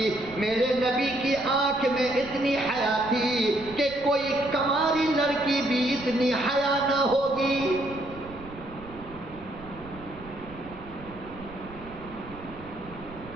میرے نبی کی آنکھ میں اتنی حیا تھی کہ کوئی کماری لڑکی بھی اتنی حیا نہ ہوگی۔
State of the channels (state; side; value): noise; right; rumble, 17 dB below the sound